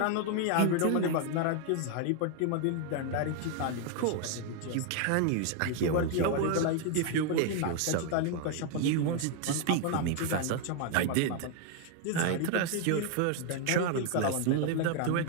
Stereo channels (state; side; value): different; both; correlation 0.00